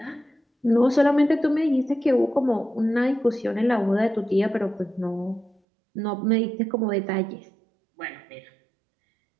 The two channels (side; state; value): left; drops out; at 5.6 s